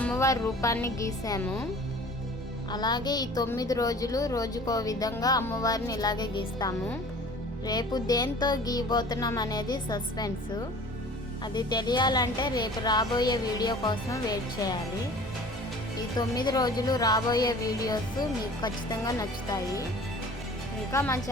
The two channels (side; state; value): both; normal; correlation 0.45